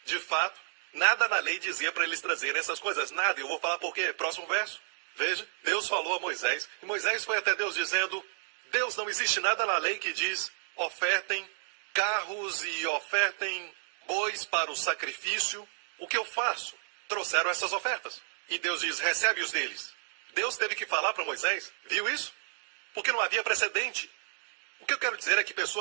De fato, nada na lei dizia para eles trazerem essas coisas. Nada. Eu vou falar por quê. Próximo verso. Veja, Deus falou a Moisés. E Moisés foi até Deus dizendo, Deus, não existe nada na lei que diz, ofertem carros e ofertem bois para o sacrifício. O que eu faço? Trouxeram essas ofertas. E Deus diz, recebe-os deles. Deus teve que falar para Moisés. Viu isso? Porque não havia precedente. O que eu quero dizer é que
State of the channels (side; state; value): left; silent; digital silence